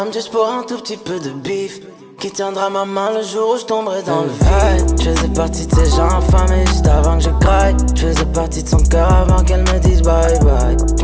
juste pour un tout petit peu de bif. Qui tiendra ma main le jour où je tomberai dans le vide. Je faisais partie de ces gens affamés juste avant que je craille. Je faisais partie de son cœur avant qu'elle me dise bye bye. Je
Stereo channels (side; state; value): both; identical; correlation 1.00